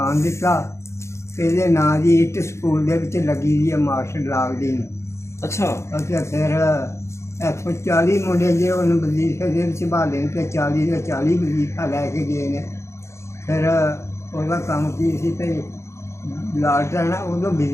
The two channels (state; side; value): late; right; 0.13 ms